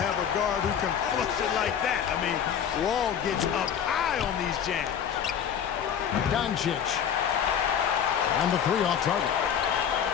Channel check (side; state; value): right; quieter; 8.5 dB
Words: a guard who can flush it like that. I mean, Wall gets up high on these jams. Doncic on the three off target.